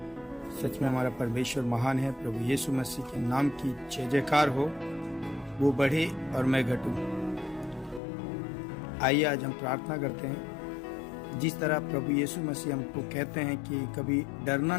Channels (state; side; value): drops out; right; at 8.0 s